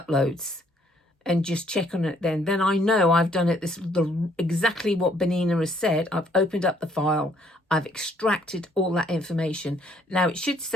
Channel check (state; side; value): normal; both; correlation 0.66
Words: and just check on it then. Then I know I've done it exactly what Bernina has said. I've opened up the file, I've extracted all that information. Now it should